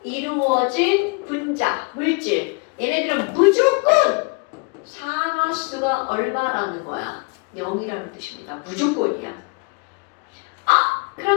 이루어진 분자, 물질. 얘네들은 무조건 산화수가 얼마라는 거야? 0이라는 뜻입니다. 무조건이야. 아,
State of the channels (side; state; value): right; quieter; 31.3 dB